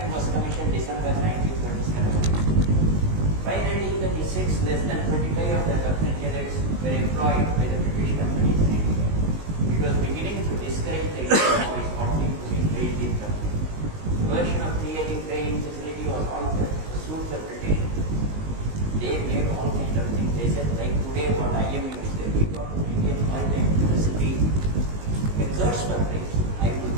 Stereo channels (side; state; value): left; late; 19 ms